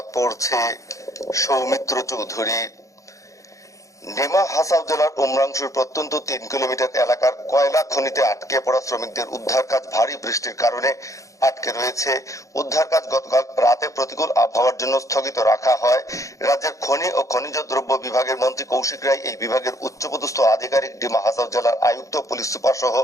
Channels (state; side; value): late; right; 0.16 ms